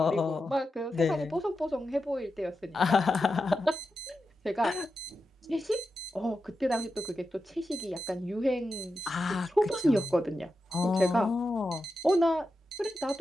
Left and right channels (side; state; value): both; normal; correlation 0.90